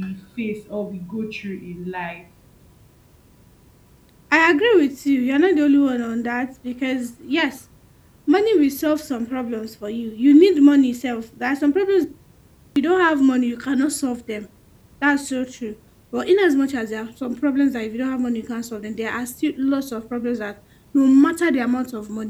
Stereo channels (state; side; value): identical; both; correlation 1.00